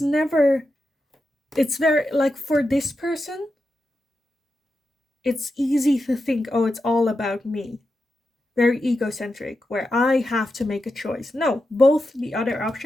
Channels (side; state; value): both; normal; correlation 0.89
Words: very, like, for this person, it's easy to think, oh, it's all about me. Very egocentric, where I have to make a choice. No, both the other